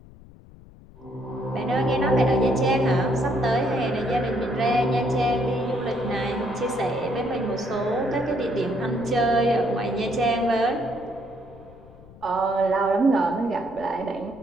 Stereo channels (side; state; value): left; noise; rumble, 22 dB below the sound